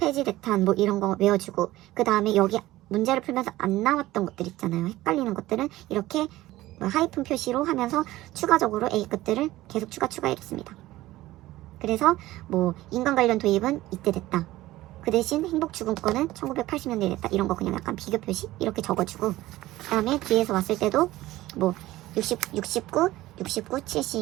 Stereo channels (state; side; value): quieter; left; 16.7 dB